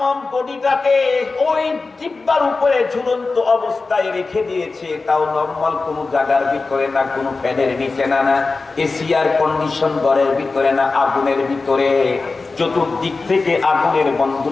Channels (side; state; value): right; quieter; 3.9 dB